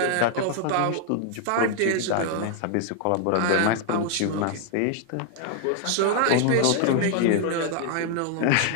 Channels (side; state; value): both; different; correlation 0.00